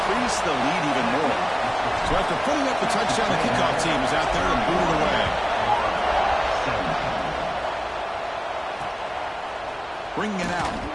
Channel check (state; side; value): identical; both; correlation 1.00